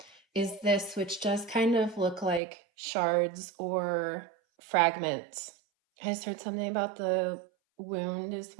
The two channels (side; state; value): left; drops out; at 2.4 s